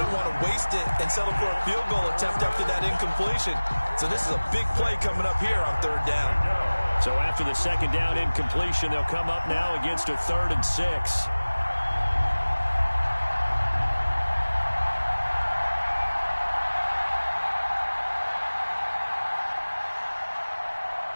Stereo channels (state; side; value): inverted; both; correlation -1.00